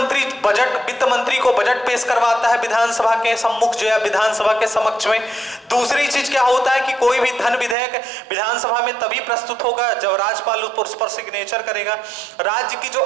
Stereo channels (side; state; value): left; drops out; at 7.8 s